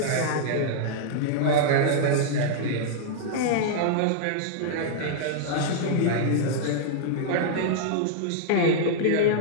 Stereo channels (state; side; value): different; both; correlation -0.02